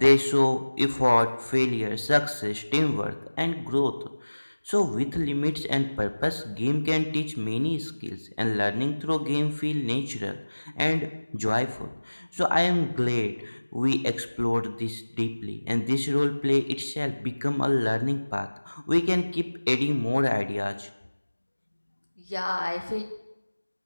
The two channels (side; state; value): both; inverted; correlation -1.00